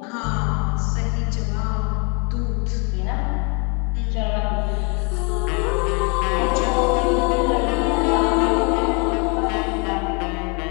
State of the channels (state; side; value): quieter; right; 33.1 dB